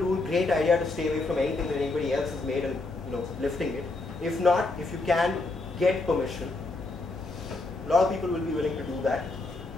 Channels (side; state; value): right; quieter; 3.2 dB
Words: great idea to stay away from anything that anybody else has made and lifting it. If not, if you can get permission, a lot of people will be willing to do that.